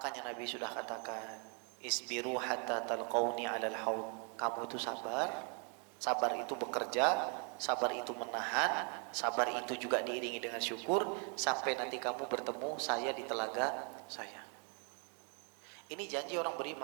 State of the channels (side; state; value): left; quieter; 39.1 dB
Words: Nabi sudah katakan, isbiru hatta talqauni 'alal haud. Kamu itu sabar. Sabar itu bekerja, sabar itu menahan, sabar itu juga diiringi dengan syukur sampai nanti kamu bertemu saya di telaga saya. Ini janji orang